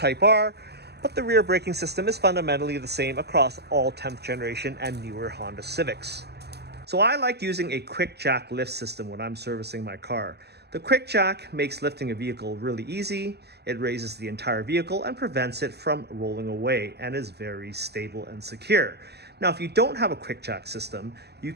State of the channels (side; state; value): left; late; 0.48 ms